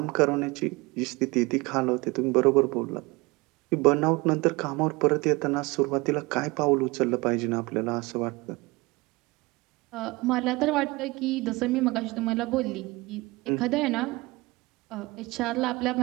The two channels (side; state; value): left; quieter; 23.1 dB